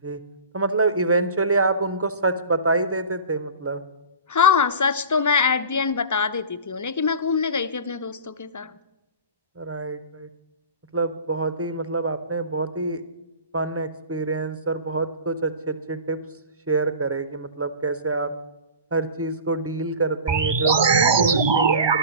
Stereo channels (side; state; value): both; inverted; correlation -0.36